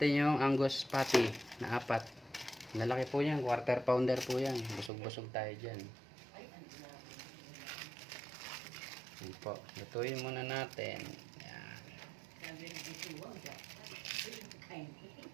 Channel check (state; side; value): drops out; left; at 4.9 s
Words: yung Angus patty na 4. Lalaki po yan, quarter pounder po yan. Busog-busog tayo dyan. Yan po, lutuin muna natin. Yan.